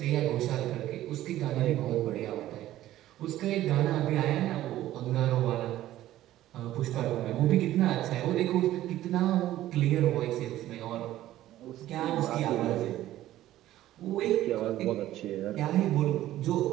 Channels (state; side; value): quieter; left; 14.1 dB